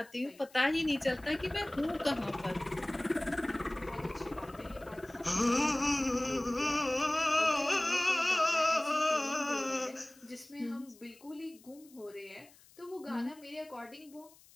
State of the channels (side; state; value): left; noise; hiss, 26 dB below the sound